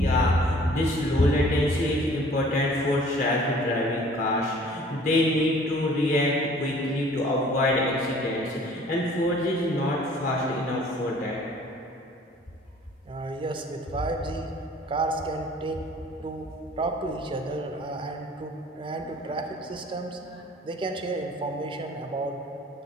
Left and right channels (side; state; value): both; normal; correlation 0.52